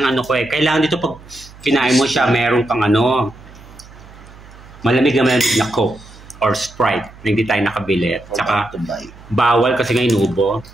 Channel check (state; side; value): noise; right; hum, 21 dB below the sound